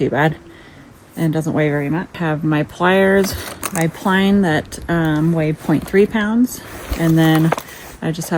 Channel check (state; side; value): identical; both; correlation 1.00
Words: bad and doesn't weigh very much. I have my pliers, my pline that weigh 0.3 pounds, and then I just